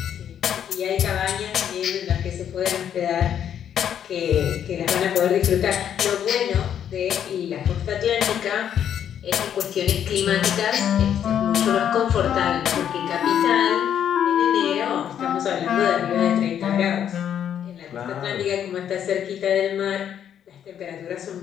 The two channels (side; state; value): right; quieter; 9.3 dB